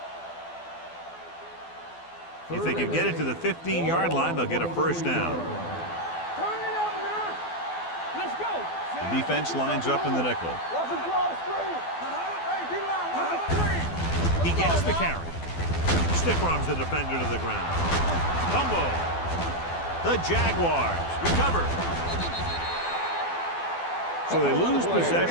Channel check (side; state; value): right; late; 12 ms